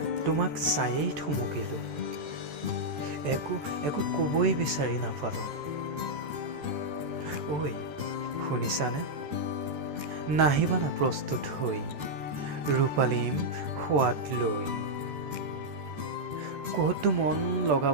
তোমাক চায়েই থমকিলোঁ, একো ক'বই বিচাৰি নাপালোঁ। ঐ শুনিছানে? নাহিবানা প্ৰস্তুত হৈ ৰূপালীম সোৱাদ লৈ। ক'তো মন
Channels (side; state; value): left; late; 14 ms